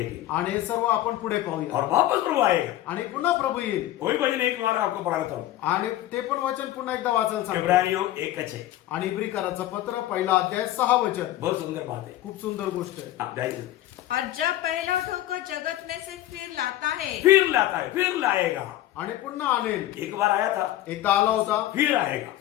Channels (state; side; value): quieter; right; 14.3 dB